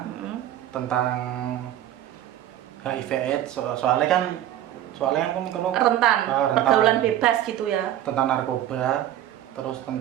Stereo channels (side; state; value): left; quieter; 12.3 dB